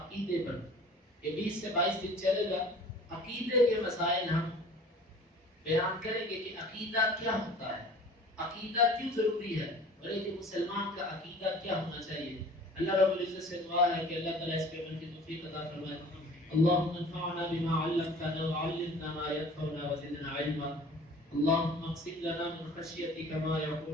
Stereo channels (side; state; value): both; normal; correlation 0.46